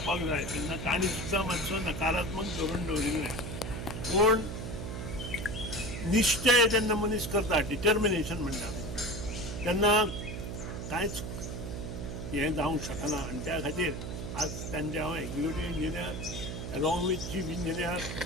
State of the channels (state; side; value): noise; right; hum, 6 dB below the sound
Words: जाय तेन्ना तांणी सुद्दां मातसो नकारात्मक धोरण दवरिल्लें। पूण निश्चय जेन्ना मनीस करता, डिटर्मिनेशन म्हणटा तेन्ना कांयच हें जावंक शकना। आनी त्या खातीर आज तांचे हांव executive engineer along with chief engineer